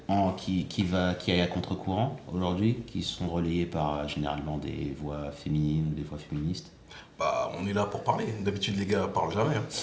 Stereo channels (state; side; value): identical; both; correlation 1.00